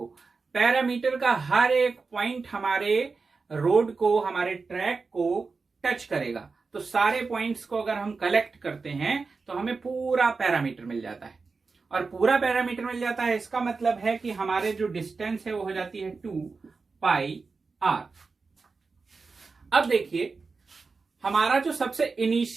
पैरामीटर का हर एक पॉइंट हमारे रोड को, हमारे ट्रैक को टच करेगा। तो सारे पॉइंट्स को अगर हम कलेक्ट करते हैं तो हमें पूरा पैरामीटर मिल जाता है, और पूरा पैरामीटर मिल जाता है इसका मतलब है कि हमारे जो डिस्टेंस है वो हो जाती है 2 पाई आर। अब देखिए हमारा जो सबसे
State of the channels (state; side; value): quieter; left; 4.4 dB